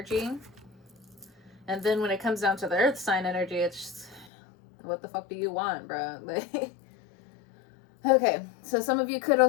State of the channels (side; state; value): right; drops out; at 4.2 s